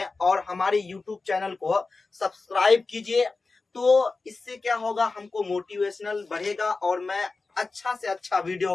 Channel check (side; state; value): right; quieter; 3.9 dB